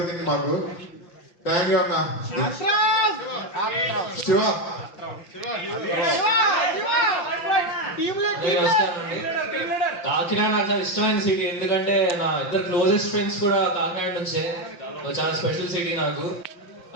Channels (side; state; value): right; late; 5.8 ms